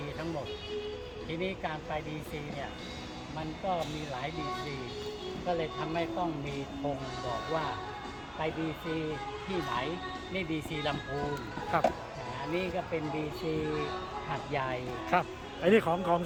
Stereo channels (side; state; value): both; identical; correlation 1.00